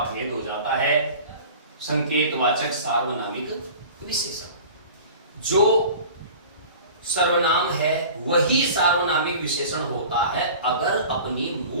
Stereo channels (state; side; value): inverted; both; correlation -0.41